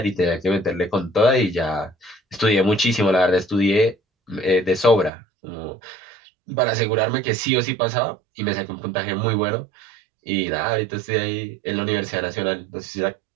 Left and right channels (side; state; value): left; drops out; at 5.1 s